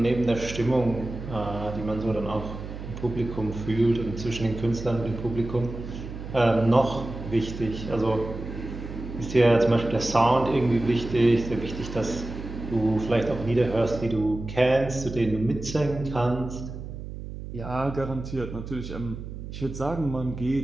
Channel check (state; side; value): noise; right; hum, 10 dB below the sound